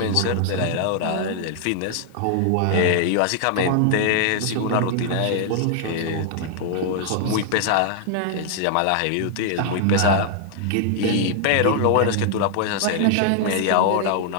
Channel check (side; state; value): both; different; correlation 0.00